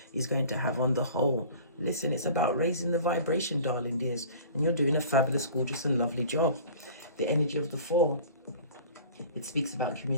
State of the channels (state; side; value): inverted; both; correlation -0.44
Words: is going to have on the whole. Listen, it's about raising the vibration, darling dears, and you're doing a fabulous, gorgeous and lovely job. The energy of the 4, it speaks about